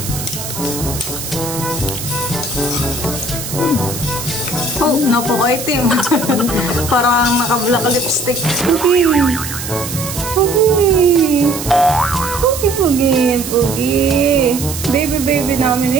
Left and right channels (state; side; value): noise; right; hiss, 8 dB below the sound